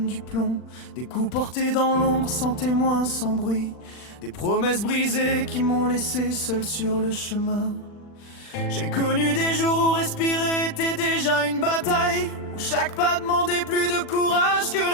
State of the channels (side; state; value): right; late; 40 ms